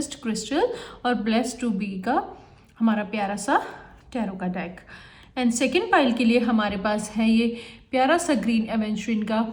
क्रिस्टल और ब्लेस्ड टू बी का हमारा प्यारा सा टैरो का डेक। एंड सेकेंड पाइल के लिए हमारे पास है ये प्यारा सा ग्रीन एवेंचुरिन का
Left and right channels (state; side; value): identical; both; correlation 1.00